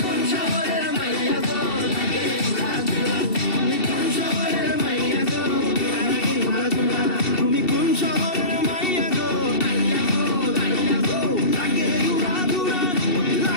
কোন শহরের মাইয়া গো লাগে উড়া ধুরা তুমি কোন শহরের মাইয়া গো লাগে উড়া ধুরা তুমি কোন শহরের মাইয়া গো লাগে উড়া ধুরা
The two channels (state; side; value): late; right; 2.7 ms